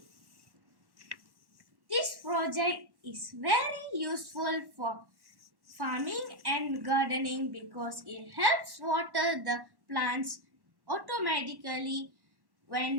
This project is very useful for farming and gardening because it helps water the plants automatically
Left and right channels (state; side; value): late; left; 1.1 ms